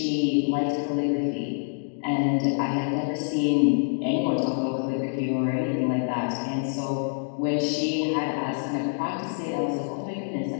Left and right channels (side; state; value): right; silent; digital silence